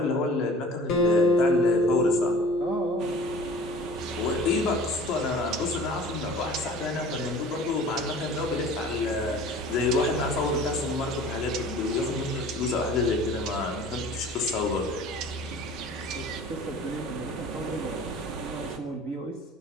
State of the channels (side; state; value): both; normal; correlation 0.45